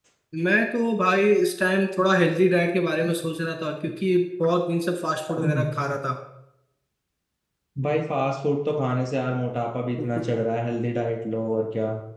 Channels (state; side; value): identical; both; correlation 1.00